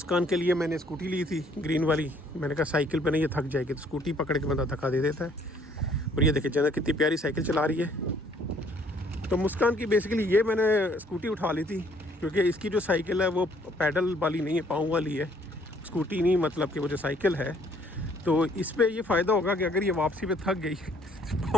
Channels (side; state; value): both; normal; correlation 0.62